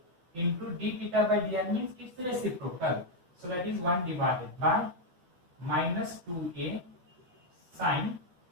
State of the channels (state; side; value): late; left; 12 ms